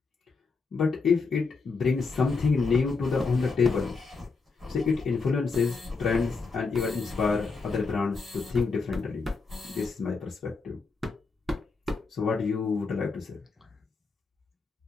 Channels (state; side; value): quieter; right; 4.4 dB